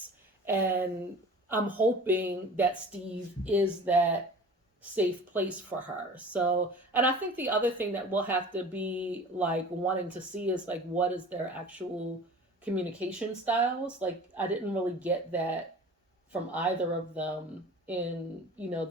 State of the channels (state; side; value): normal; both; correlation 0.41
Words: And I'm hoping that Steve is that safe place for her. So, and I think the other thing that we'll have to be like wanting to see is like what is their actual communication styles. Like I didn't really get that from either of them in